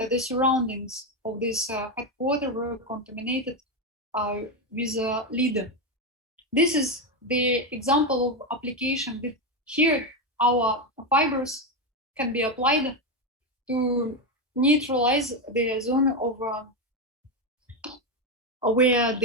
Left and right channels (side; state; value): both; normal; correlation 0.10